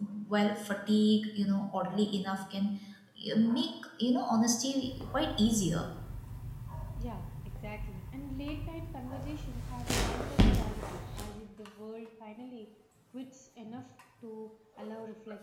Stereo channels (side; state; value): both; identical; correlation 1.00